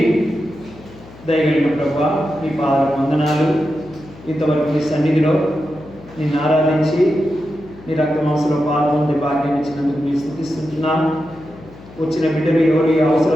దయగలిగిన ప్రభువా, నీ పాదాలకు వందనాలు. ఇంతవరకు నీ సన్నిధిలో నిన్ను ఆరాధించి నీ రక్తమాంసంలో పాల్గొండే భాగ్యం ఇచ్చినందుకు నీ స్తుతిస్తున్నాను. వచ్చిన బిడ్డలు ఎవరు ఏ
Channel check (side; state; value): left; noise; hum, 20 dB below the sound